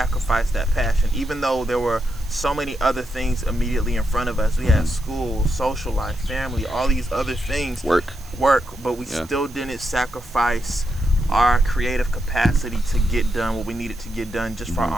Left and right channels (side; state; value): right; noise; hiss, 22 dB below the sound